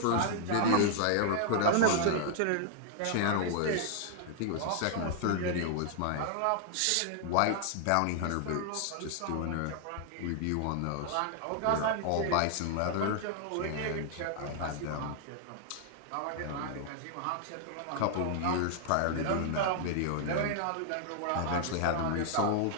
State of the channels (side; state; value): both; different; correlation 0.00